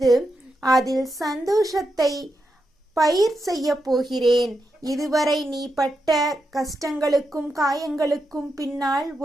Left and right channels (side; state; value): both; normal; correlation 0.86